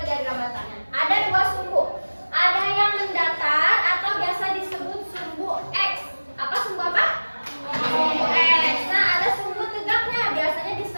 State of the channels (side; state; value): both; inverted; correlation -1.00